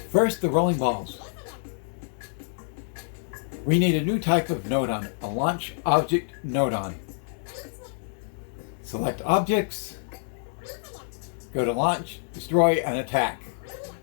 First, the rolling balls. We need a new type of nodon, a launch object nodon. Select objects, go to launch, destroy, and attack.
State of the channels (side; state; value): right; silent; digital silence